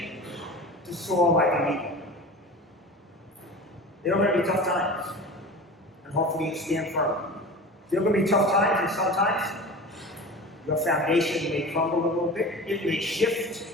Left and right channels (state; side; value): normal; both; correlation 0.34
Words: To soar like an eagle. There are going to be tough times. And hopefully you stand firm. There are going to be tough times, and sometimes your foundation may crumble a little bit. It may shift.